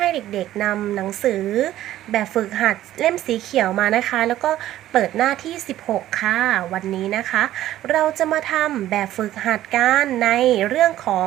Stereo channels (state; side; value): quieter; left; 13.5 dB